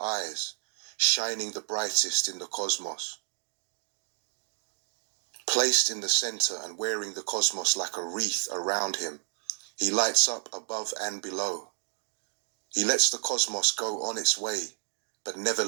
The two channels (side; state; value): left; silent; 58 dB below the other